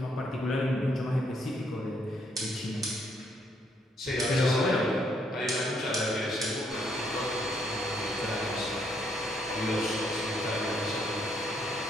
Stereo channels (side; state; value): both; normal; correlation 0.71